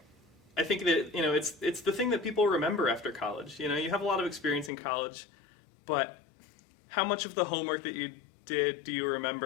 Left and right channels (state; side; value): drops out; right; at 4.7 s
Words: I think that it's the thing that people remember after college. You have a lot of experience in college, but how much of the homework that you did do you